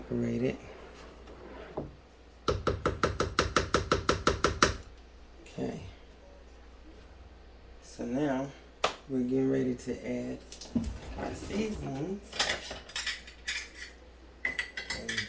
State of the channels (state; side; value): identical; both; correlation 1.00